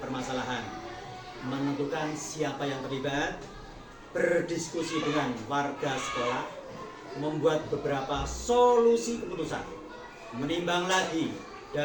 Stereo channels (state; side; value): identical; both; correlation 1.00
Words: permasalahan, menentukan siapa yang terlibat, berdiskusi dengan warga sekolah, membuat beberapa solusi keputusan, menimbang lagi